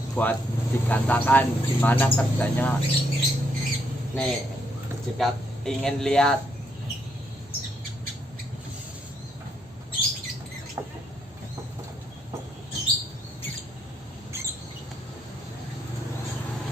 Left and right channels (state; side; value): normal; both; correlation 0.75